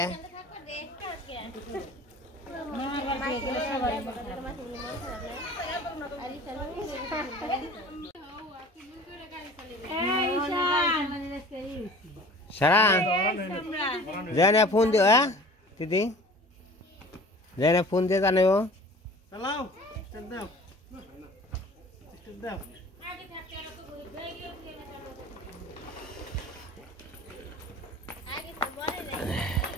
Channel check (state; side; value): normal; both; correlation 0.44